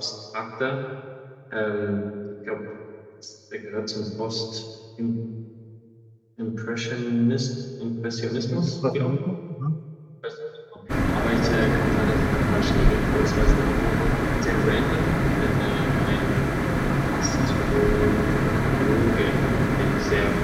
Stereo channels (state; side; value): identical; both; correlation 1.00